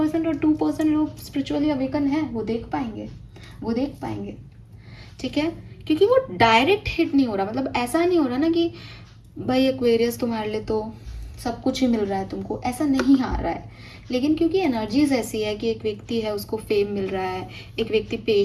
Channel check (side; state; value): both; identical; correlation 1.00